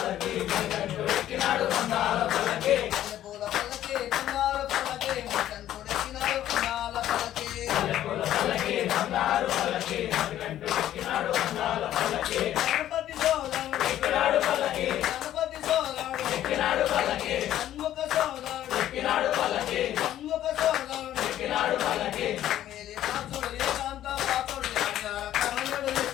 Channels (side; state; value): right; quieter; 12.4 dB